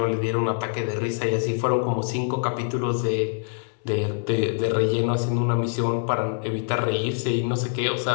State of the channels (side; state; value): right; silent; 62 dB below the other